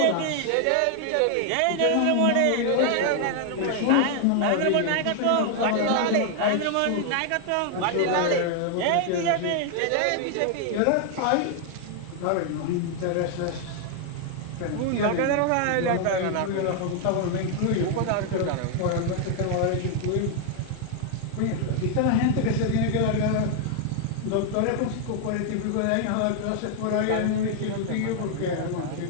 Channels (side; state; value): both; different; correlation 0.00